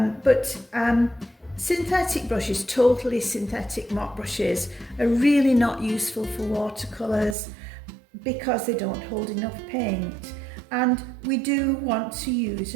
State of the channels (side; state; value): left; drops out; at 7.4 s